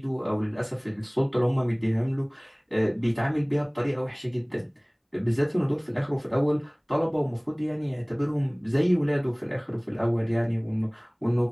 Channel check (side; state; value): both; identical; correlation 1.00